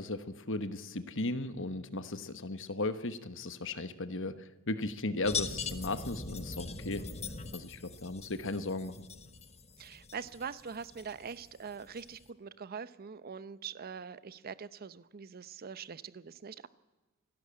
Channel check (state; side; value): normal; both; correlation 0.14